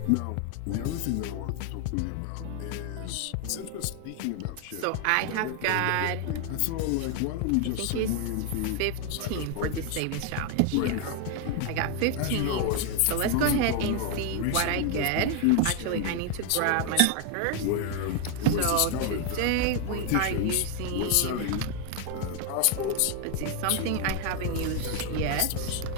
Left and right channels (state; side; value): different; both; correlation 0.01